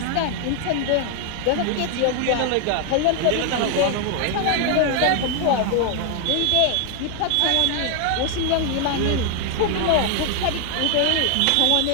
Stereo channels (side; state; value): both; different; correlation 0.00